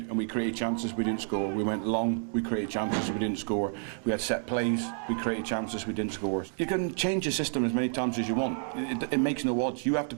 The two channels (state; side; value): silent; left; 58 dB below the other